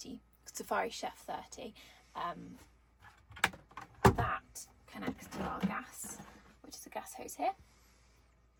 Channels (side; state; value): both; identical; correlation 1.00